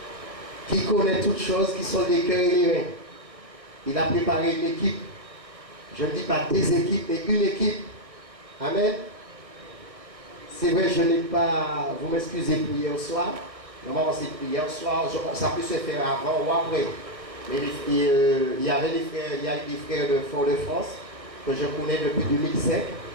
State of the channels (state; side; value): late; left; 1.6 ms